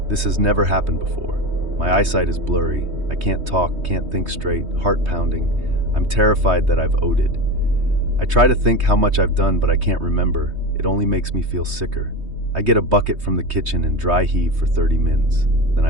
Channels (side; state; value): left; late; 3.2 ms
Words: This has never happened before. My eyesight is blurry. I can't talk, can't think straight, heart pounding. I'm terrified that I've OD'd. I try to think how much I've done, but I can't remember. It only makes me feel sicker. I get a bucket from the kitchen and dry heave for 30 mins. Then